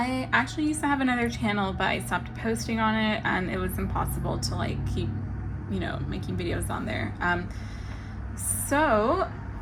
actually used to have another channel, but I stopped posting on it, and it was impossible to keep, making videos on there. So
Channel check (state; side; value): identical; both; correlation 1.00